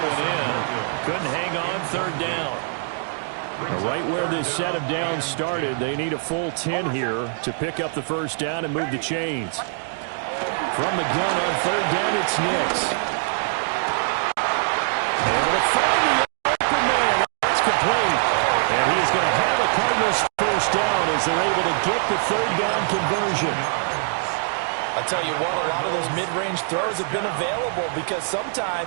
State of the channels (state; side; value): silent; left; digital silence